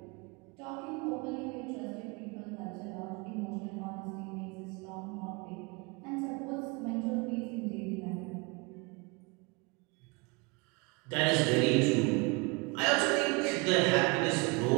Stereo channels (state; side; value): quieter; left; 28.2 dB